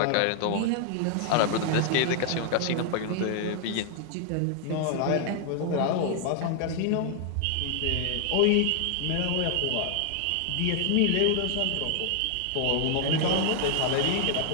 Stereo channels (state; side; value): different; both; correlation 0.00